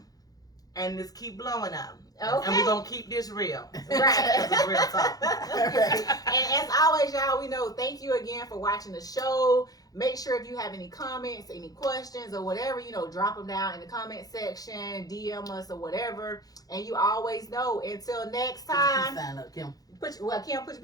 and just keep blowing up. Okay. And we're gonna keep this real. Right. This is real talk. Right. And as always, y'all, we know thank you again for watching the show. Make sure if you have any comments, any questions, or whatever, drop them down in the comment section, DM us or whatever. And you always know, until next time, Sign up, Kim. Kim, put your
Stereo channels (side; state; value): right; late; 0.18 ms